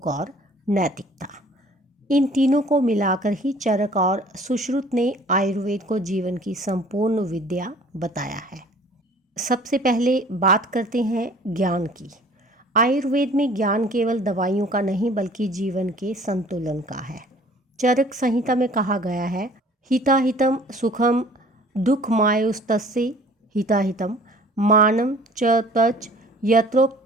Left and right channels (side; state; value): both; normal; correlation 0.51